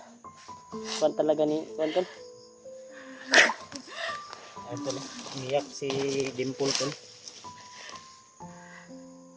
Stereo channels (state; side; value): identical; both; correlation 1.00